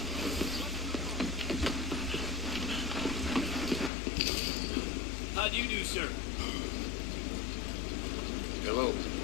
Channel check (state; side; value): drops out; right; at 3.9 s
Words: How do you do, sir? Hello.